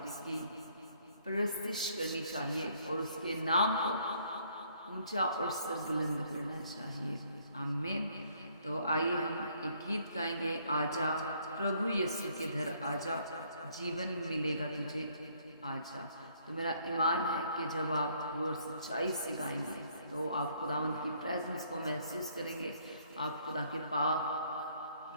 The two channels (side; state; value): both; inverted; correlation -0.65